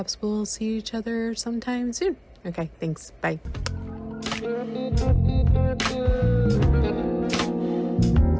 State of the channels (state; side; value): identical; both; correlation 1.00